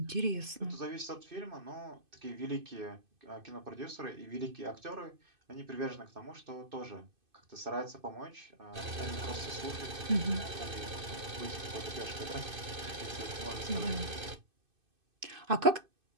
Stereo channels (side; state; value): left; late; 2.5 ms